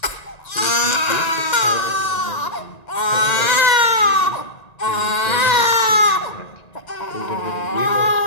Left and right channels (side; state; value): right; late; 1.9 ms